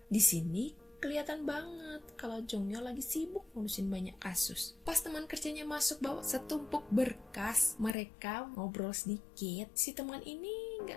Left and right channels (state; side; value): drops out; right; at 8.0 s